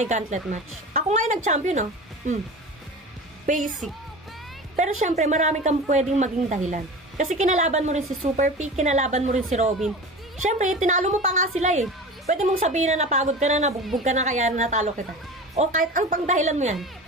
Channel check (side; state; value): both; normal; correlation 0.33